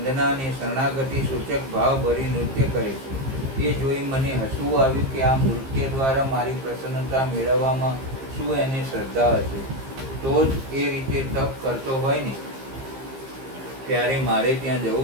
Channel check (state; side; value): late; left; 15 ms